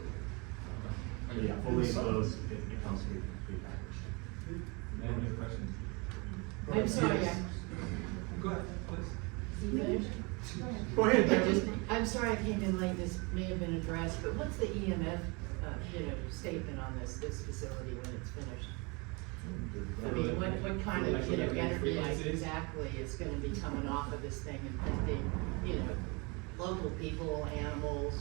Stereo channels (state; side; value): quieter; left; 29.2 dB